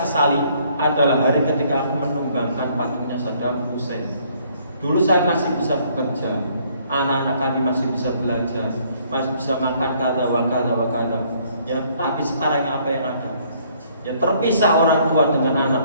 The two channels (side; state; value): both; inverted; correlation -0.64